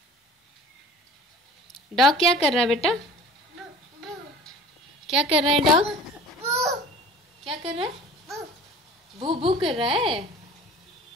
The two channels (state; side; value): normal; both; correlation 0.43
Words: डॉग क्या कर रहा है बेटा? क्या कर रहा है डॉग? क्या कर रहा है? भू भू कर रहा है।